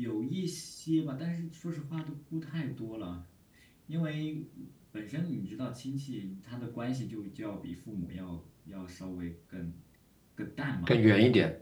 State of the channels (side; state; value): both; identical; correlation 1.00